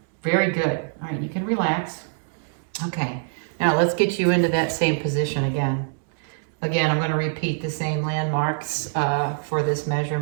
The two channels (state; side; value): silent; left; digital silence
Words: very good. All right, you can relax. Okay, now let's get you into that same position again. Again, I'm going to repeat the same landmarks for this